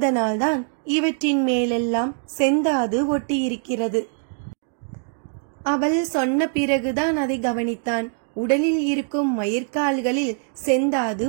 இவற்றின் மேலெல்லாம் செந்தாது ஒட்டியிருக்கிறது. அவள் சொன்ன பிறகுதான் அதை கவனித்தான். உடலில் இருக்கும் மயிர்கால்களில் செந்தாது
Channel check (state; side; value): silent; left; 63 dB below the other